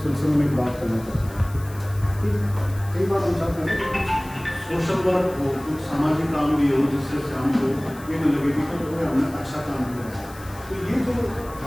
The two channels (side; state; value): left; noise; hiss, 20 dB below the sound